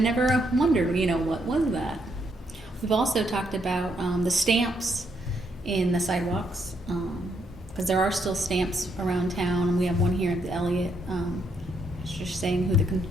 wondered, what was that? We've also talked about the stamps in the sidewalks, because there are still stamps around town, and we have one here at the Elliott, just saying who the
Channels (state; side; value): normal; both; correlation 0.75